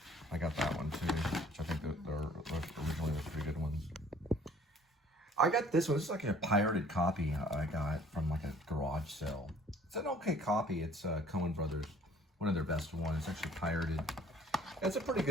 I got that one too, which I think that originally was pretty good ones. I got this one. This is like a pirated copy I got from like a garage sale. It's an okay copy. It's Coen Brothers, one of their best ones. It's actually pirated. It's a pretty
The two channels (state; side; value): normal; both; correlation 0.54